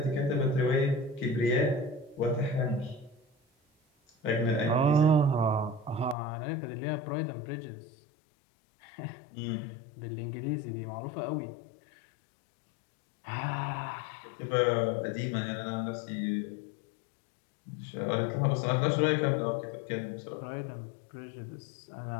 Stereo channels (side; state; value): right; drops out; at 6.2 s